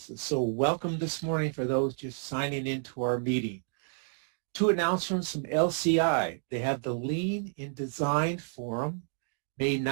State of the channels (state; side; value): silent; left; digital silence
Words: So welcome this morning for those just signing into our meeting. 2 announcements from LCI. They have the Lean in Design Forum, May